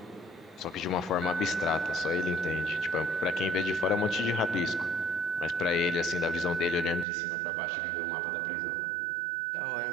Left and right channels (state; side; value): drops out; left; at 7.1 s